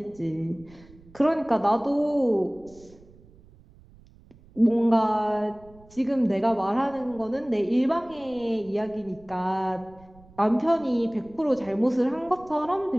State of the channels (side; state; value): right; noise; rumble, 25 dB below the sound